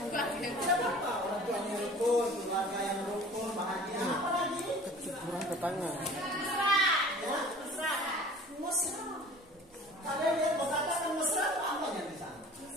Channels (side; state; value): both; normal; correlation 0.45